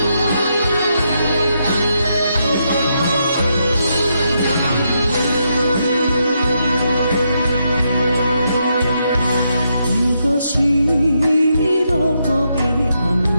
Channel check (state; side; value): inverted; both; correlation -0.80